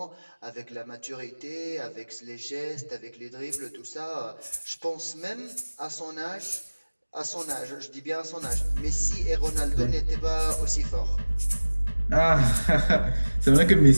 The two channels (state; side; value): inverted; both; correlation -1.00